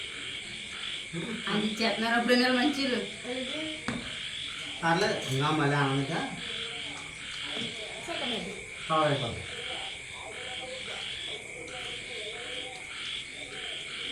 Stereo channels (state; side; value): identical; both; correlation 1.00